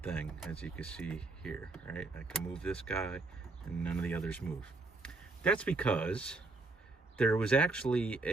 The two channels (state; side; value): quieter; left; 3.4 dB